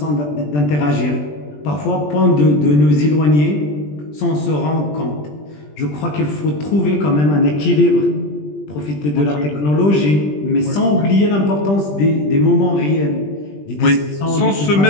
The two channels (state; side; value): late; right; 20 ms